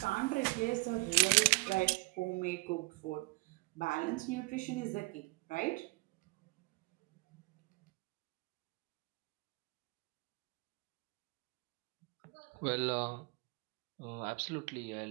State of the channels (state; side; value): quieter; left; 26.7 dB